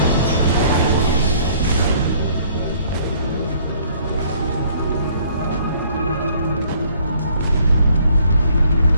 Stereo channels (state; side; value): inverted; both; correlation -0.60